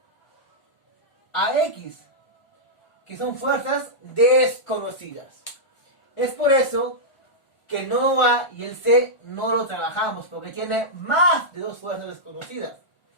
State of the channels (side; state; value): right; late; 1.4 ms